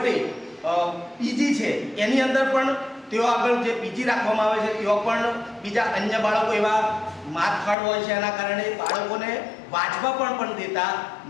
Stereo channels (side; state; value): right; drops out; at 7.8 s